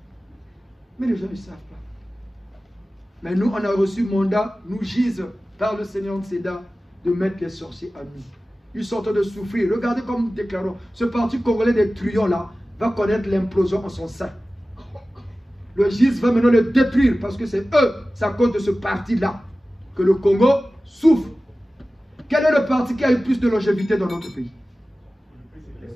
Mais les gens ne savent pas. Mais nous, on a reçu mandat, nous gise par le Seigneur de Séda, de mettre les sorciers à nous. Ils sont en train de souffrir. Regardez comme nous déclarons. Ce parti congolais des truands là va connaître l'implosion en son sein. Le GIS va maintenant le détruire parce que c'est eux, c'est à cause de ce parti-là que le Congo souffre. Quel est le parti qui a eu plus de longévité dans notre pays?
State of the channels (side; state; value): both; normal; correlation 0.96